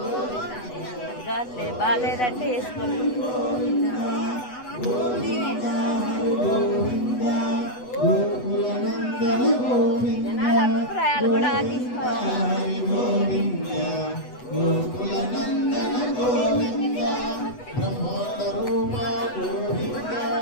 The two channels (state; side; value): late; right; 8.1 ms